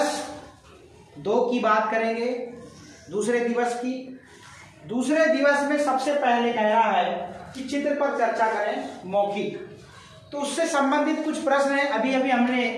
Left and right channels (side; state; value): both; identical; correlation 1.00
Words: 2 की बात करेंगे, दूसरे दिवस की। दूसरे दिवस में सबसे पहले कह रहा है कि चित्र पर चर्चा करें मौखिक। तो उससे संबंधित कुछ प्रश्न है। अभी अभी हमने